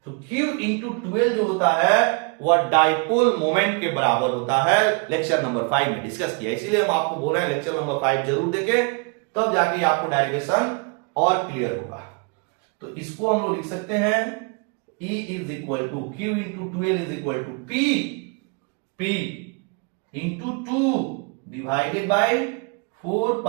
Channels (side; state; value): left; quieter; 34.2 dB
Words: तो Q इंटू 12 जो होता है वह डाइपोल मोमेंट के बराबर होता है। लेक्चर नंबर 5 में डिस्कस किया, इसीलिए हम आपको बोल रहे हैं लेक्चर नंबर 5 जरूर देखें, तब जाके आपको डेरिवेशन और क्लियर होगा। तो इसको हम लोग लिख सकते हैं E is equal to Q into 12 is equal to P into 2 divided by 4